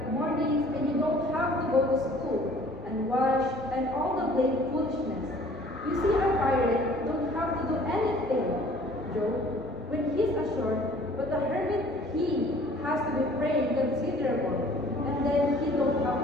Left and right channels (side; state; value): both; normal; correlation 0.53